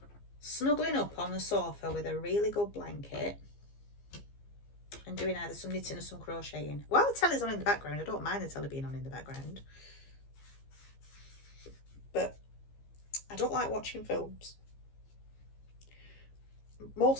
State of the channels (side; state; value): right; late; 15 ms